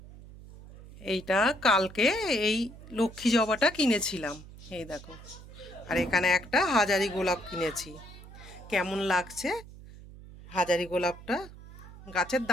এইটা কালকে এই লক্ষ্মী জবাটা কিনেছিলাম, এই দেখো। আর এখানে একটা হাজারি গোলাপ কিনেছি। কেমন লাগছে হাজারি গোলাপটা? গাছের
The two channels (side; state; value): right; noise; hum, 17 dB below the sound